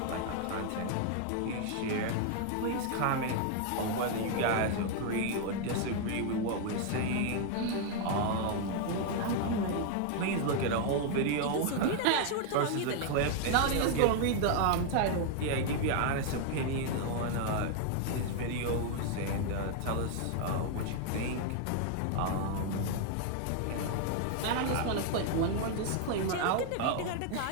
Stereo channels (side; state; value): both; different; correlation 0.00